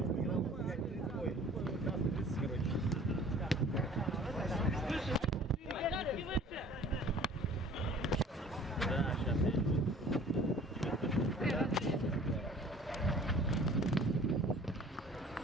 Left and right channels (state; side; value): normal; both; correlation 0.49